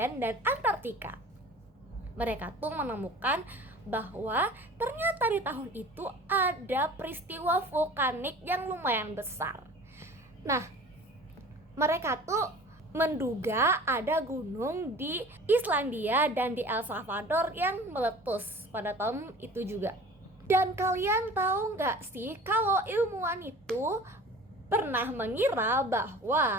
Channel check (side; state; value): both; normal; correlation 0.43